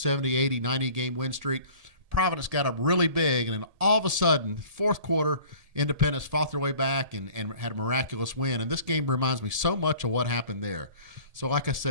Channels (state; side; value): late; left; 1.7 ms